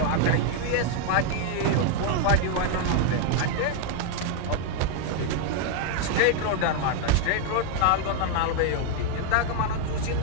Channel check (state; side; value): different; both; correlation 0.00